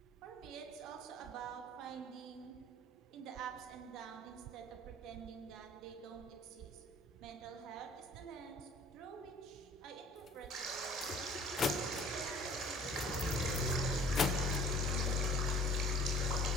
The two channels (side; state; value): both; normal; correlation 0.51